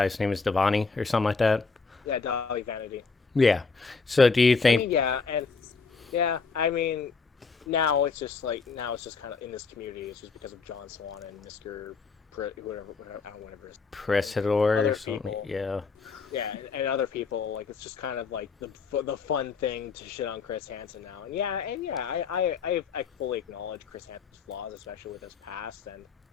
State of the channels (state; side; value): quieter; right; 4.7 dB